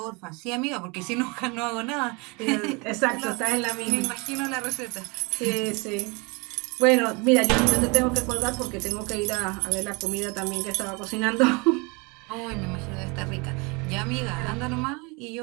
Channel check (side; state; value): left; quieter; 28.8 dB